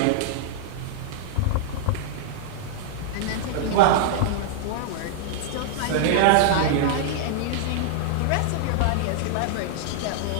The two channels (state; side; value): different; both; correlation -0.01